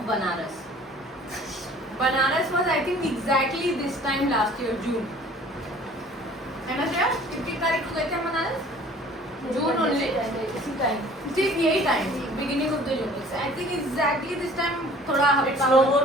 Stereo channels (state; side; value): normal; both; correlation 0.50